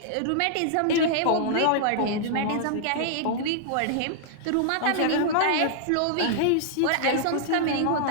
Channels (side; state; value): both; different; correlation -0.01